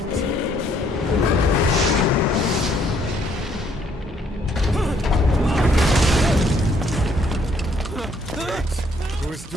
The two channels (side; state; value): both; normal; correlation 0.67